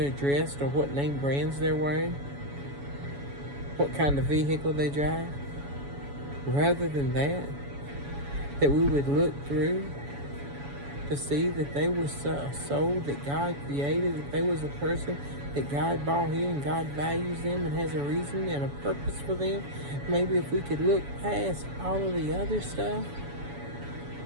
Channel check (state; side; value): late; left; 7.1 ms